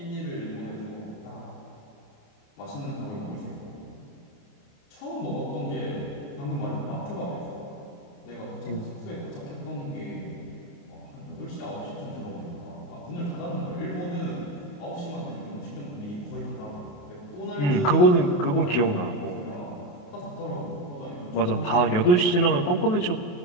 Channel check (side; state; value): right; late; 28 ms